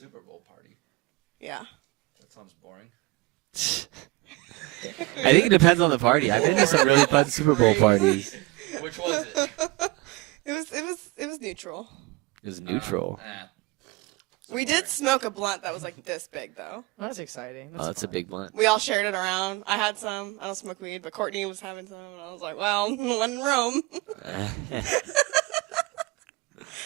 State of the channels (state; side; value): quieter; left; 22.1 dB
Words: Bowl party. Yeah. That sounds boring. I think it depends on the party. I've been to some really fun Super Bowl parties. Which was it? It was neutral. It was neutral. We did smoke a blunt that was like this big though. That's exciting. Oh, that's a fun. big one. We all shared it around. I had some. I don't smoke weed, but Courtney was having some, and I was like, well, when in Rome.